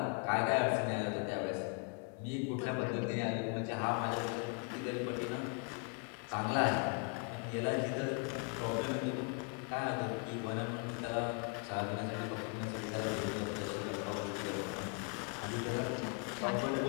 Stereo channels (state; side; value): quieter; right; 35.9 dB